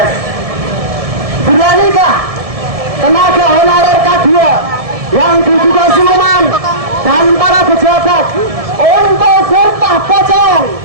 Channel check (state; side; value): late; left; 1.7 ms